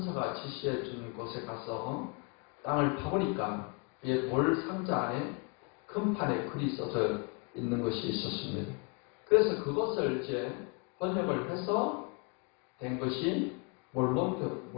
지시해 준 곳에 가서 땅을 파보니까 돌 상자 안에 금판에 글이 써져 있는 것이 있었습니다. 그래서 그것을 이제 번역을 해서 된 것이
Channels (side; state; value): right; quieter; 32.7 dB